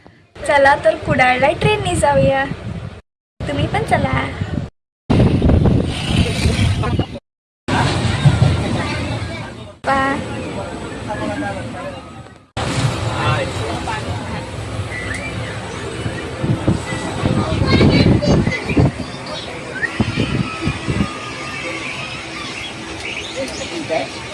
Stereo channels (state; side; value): identical; both; correlation 1.00